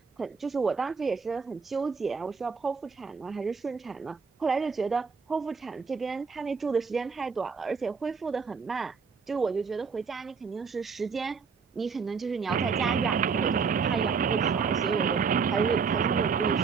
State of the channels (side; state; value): left; quieter; 5.5 dB